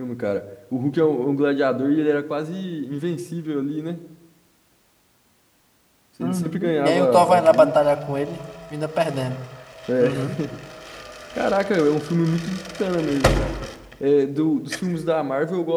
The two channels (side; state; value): both; identical; correlation 1.00